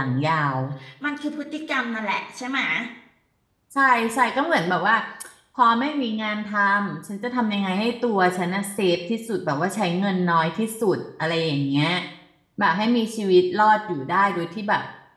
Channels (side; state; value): both; identical; correlation 1.00